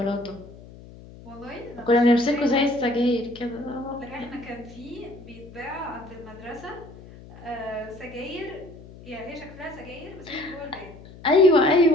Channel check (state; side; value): noise; left; hum, 18 dB below the sound